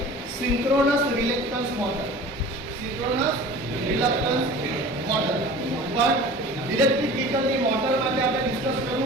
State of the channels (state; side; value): normal; both; correlation 0.41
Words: synchronous reluctance motor. Synchronous reluctance motor. પણ ઇલેક્ટ્રિક વ્હીકલની મોટર માટે આપણે ડિસ્કસ